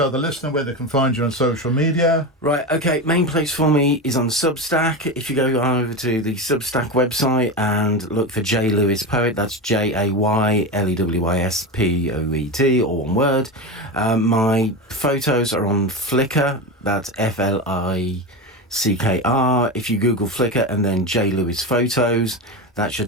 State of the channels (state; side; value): normal; both; correlation 0.20